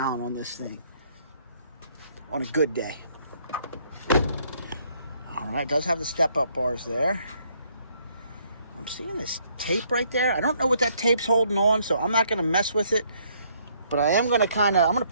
on this thing on a good day. All right, it does have the step-up bars there. I'm seeing this tape right there. I don't know what that tape's holding on, so I'm not going to mess with it. But I am going to I'm going to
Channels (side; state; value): both; inverted; correlation -0.67